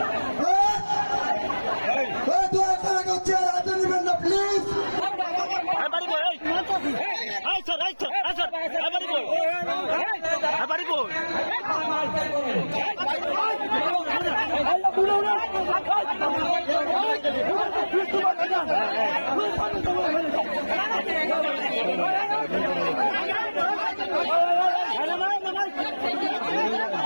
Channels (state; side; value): inverted; both; correlation -1.00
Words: দু একটা চেয়ার হাতে নেবেন না প্লিজ। এবারে